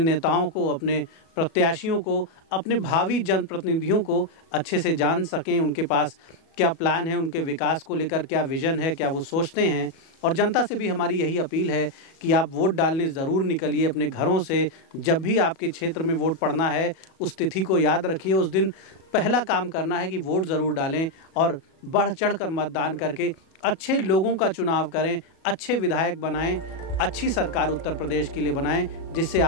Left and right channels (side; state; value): right; late; 37 ms